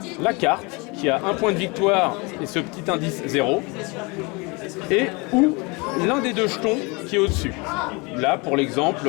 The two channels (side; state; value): right; quieter; 28.0 dB